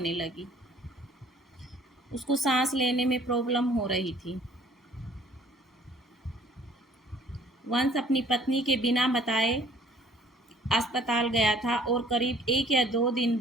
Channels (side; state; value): both; normal; correlation 0.56